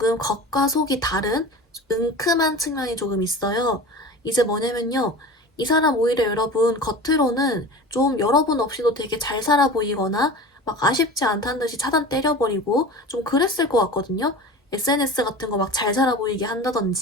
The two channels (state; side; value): normal; both; correlation 0.35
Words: 겉과 속이 다른 은큼한 측면이 조금 있어요. 이제 뭐냐면요. 이 사람 오히려 여러분 겉으로는 좀 여러분 없이도 되게 잘 살아 보이거나 막 아쉽지 않다는 듯이 차단 때려버리고 좀 그랬을 것 같거든요. SNS 같은 거 막 잘 살아 보이게